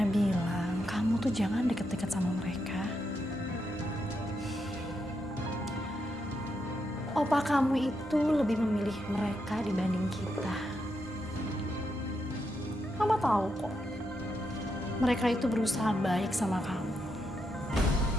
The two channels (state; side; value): normal; both; correlation 0.82